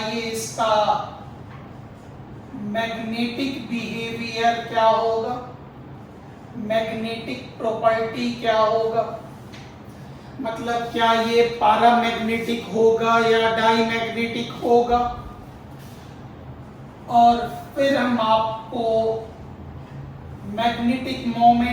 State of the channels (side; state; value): both; identical; correlation 1.00